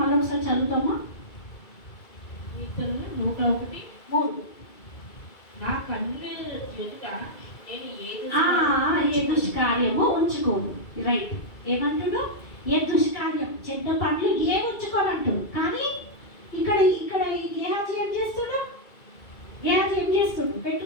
మళ్ళీ ఒకసారి చదువుతామా? 101:3 నా కన్నుల ఎదుట నేను ఏ దుష్కార్యము ఉంచుకోను. రైట్. ఏమంటాడు? ఏ దుష్కార్యం, చెడ్డ పనులు ఏ ఉంచుకోనంటాడు. కానీ ఇక్కడ ఇక్కడ ఈ గేహాజీ ఏం చేస్తాడు? గేహాజీ ఏం చేస్తాడు?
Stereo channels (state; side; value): late; right; 2.3 ms